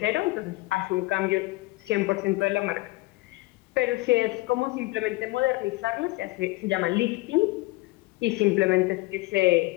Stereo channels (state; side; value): quieter; right; 21.2 dB